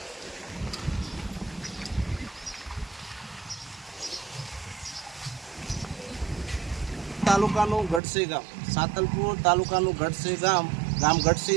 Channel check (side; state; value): left; drops out; at 8.0 s